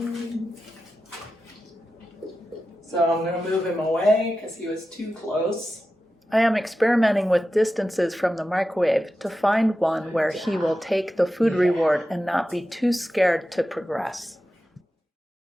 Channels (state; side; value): normal; both; correlation 0.92